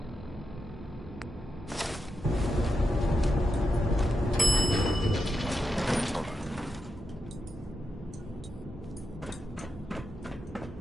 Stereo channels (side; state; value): both; normal; correlation 0.86